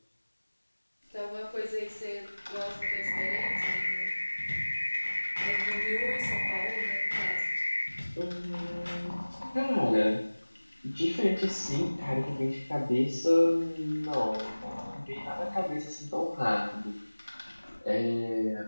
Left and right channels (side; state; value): both; inverted; correlation -1.00